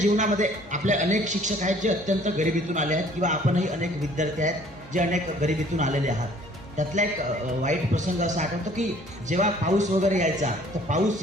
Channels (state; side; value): normal; both; correlation 0.56